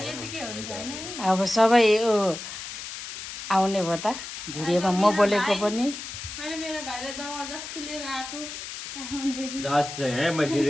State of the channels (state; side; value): noise; left; hiss, 9 dB below the sound